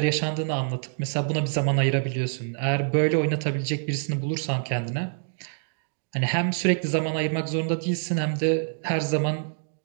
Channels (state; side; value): silent; left; digital silence